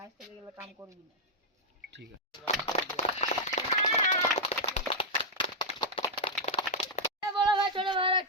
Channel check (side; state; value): both; normal; correlation -0.06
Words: आज থেকে এগুলো काम করবি না ठीक है বড় ভাই ছোট ভাইরা